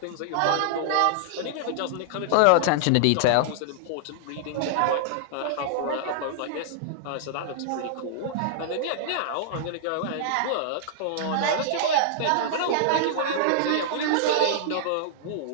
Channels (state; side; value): different; both; correlation -0.01